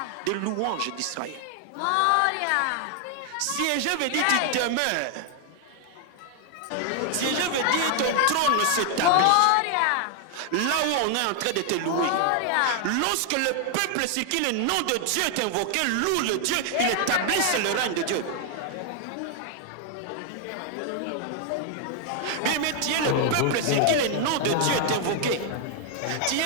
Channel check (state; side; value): different; both; correlation 0.00